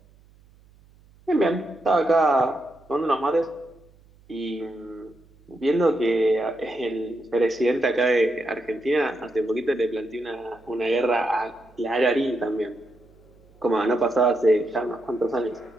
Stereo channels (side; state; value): right; noise; hum, 28 dB below the sound